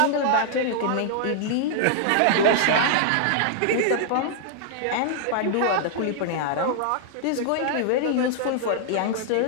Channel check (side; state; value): both; different; correlation -0.01